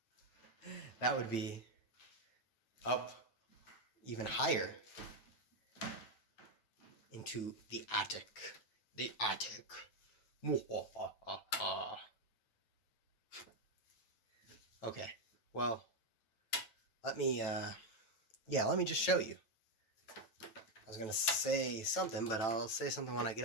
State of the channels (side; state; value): right; late; 9.1 ms